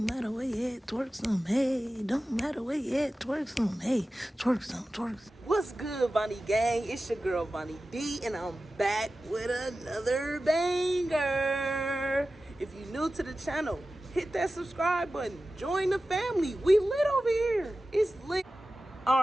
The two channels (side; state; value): both; normal; correlation 0.95